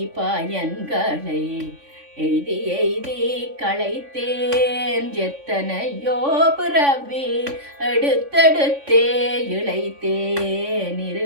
பயன்களை எய்தி எய்தி களைத்தேன். எத்தனையோ பிறவி எடுத்தெடுத்தே இளைத்தேன்,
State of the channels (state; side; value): late; left; 3.5 ms